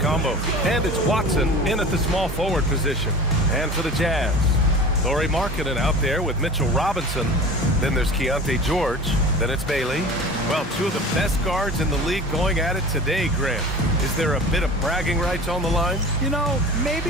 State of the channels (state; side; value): normal; both; correlation 0.37